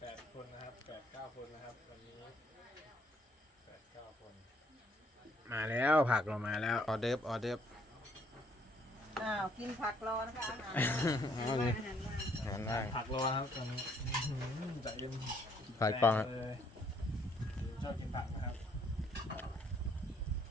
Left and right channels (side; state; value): both; normal; correlation 0.66